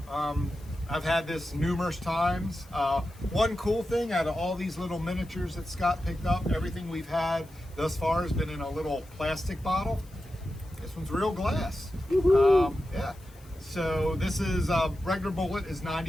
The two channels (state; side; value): noise; left; hiss, 26 dB below the sound